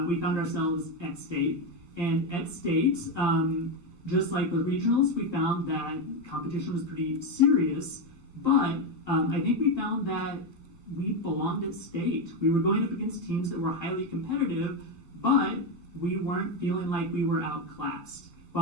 We found ourselves at state. And at state, just like with regionals, we found that competition was pretty serious. But I think we found that we belonged at state. We were going up against teams that were highly competitive, but we weren't feeling like we were outclassed.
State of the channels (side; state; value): right; late; 12 ms